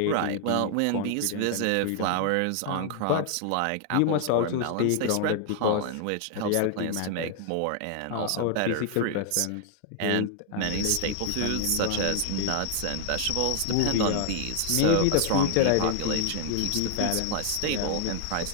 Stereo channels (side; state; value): both; different; correlation 0.00